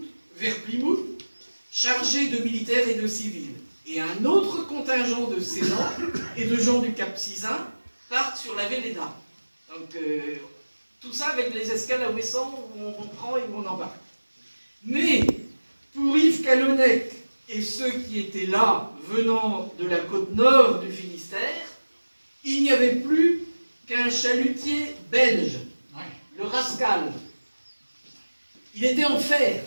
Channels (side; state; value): both; inverted; correlation -1.00